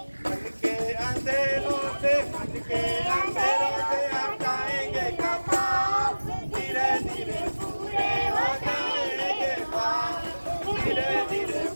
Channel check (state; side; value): inverted; both; correlation -1.00